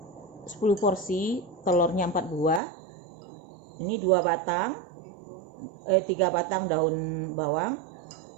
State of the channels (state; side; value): drops out; left; at 2.6 s